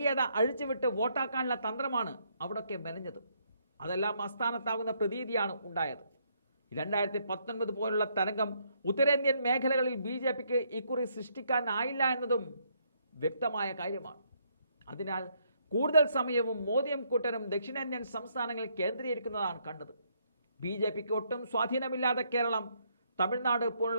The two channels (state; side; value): inverted; both; correlation -0.72